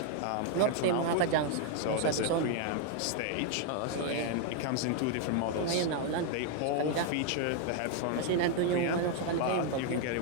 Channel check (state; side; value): different; both; correlation 0.00